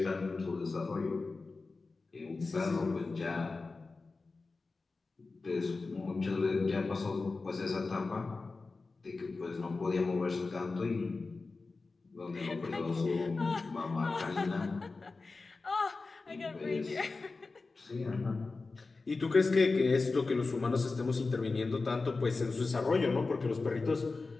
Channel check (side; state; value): right; quieter; 3.8 dB